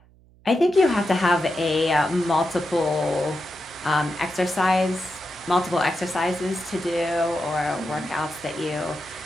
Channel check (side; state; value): right; noise; hum, 28 dB below the sound